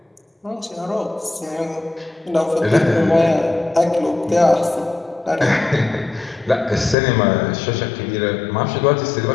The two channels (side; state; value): right; drops out; at 7.0 s